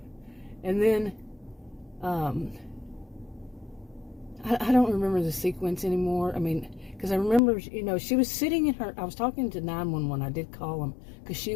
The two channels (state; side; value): drops out; right; at 7.4 s